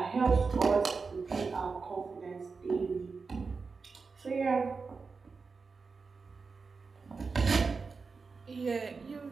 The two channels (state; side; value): quieter; left; 4.7 dB